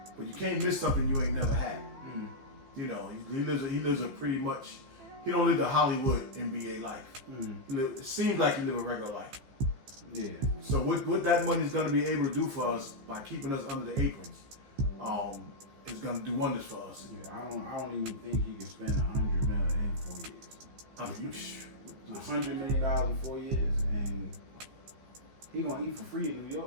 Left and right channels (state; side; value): late; left; 15 ms